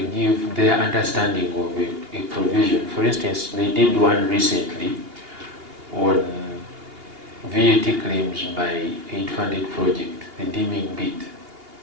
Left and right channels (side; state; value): left; late; 2.8 ms